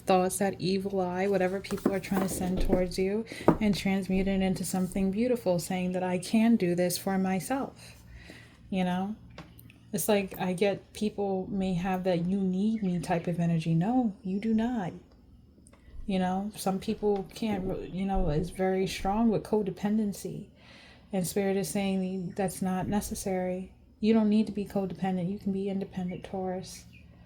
that evil eye, whatever people are trying to send towards you, and transmute it into something beautiful, saying that I can do this for myself, you know? It's like I get people may have that you need me type of energy. No, you do not. You know, some people can't, you know, is very strong with codependency. And Spirit is saying that's not necessary. You don't need to be codependent. You can be independent, Taurus.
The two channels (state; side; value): identical; both; correlation 1.00